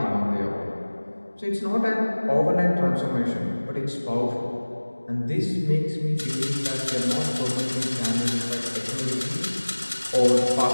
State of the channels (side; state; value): both; inverted; correlation -1.00